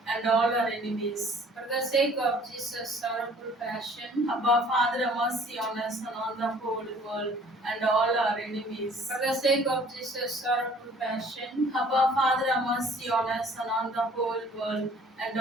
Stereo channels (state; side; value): normal; both; correlation 0.54